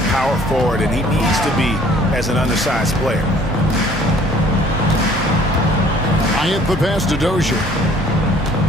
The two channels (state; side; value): normal; both; correlation 0.56